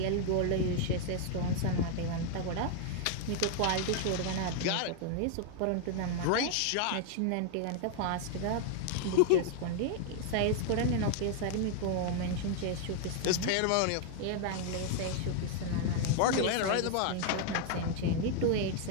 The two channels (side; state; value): both; different; correlation 0.00